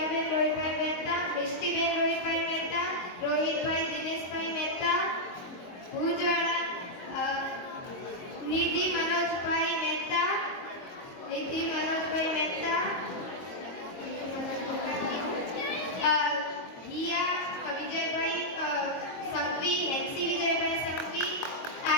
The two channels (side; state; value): right; late; 22 ms